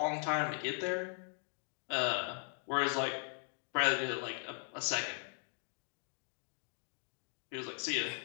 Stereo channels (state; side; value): silent; right; 52 dB below the other